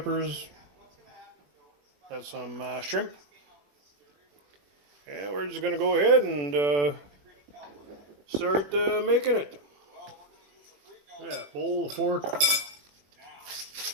got some shrimp. And we're just going to go ahead and start making it. Yeah, bowl, a fork.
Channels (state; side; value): late; left; 21 ms